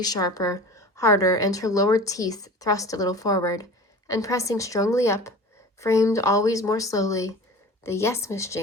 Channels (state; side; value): normal; both; correlation 0.38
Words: sharper, harder, and her lower teeth thrust a little forward, and pressing strongly up, framed always more slowly the "Yes, Miss